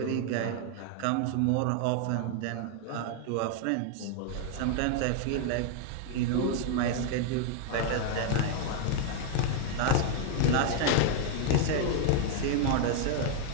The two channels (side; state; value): both; different; correlation 0.00